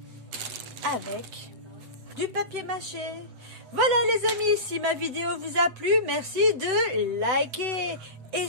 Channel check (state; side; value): late; left; 7.9 ms